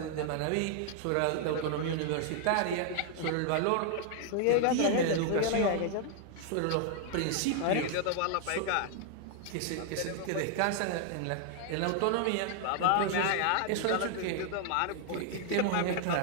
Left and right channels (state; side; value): different; both; correlation 0.00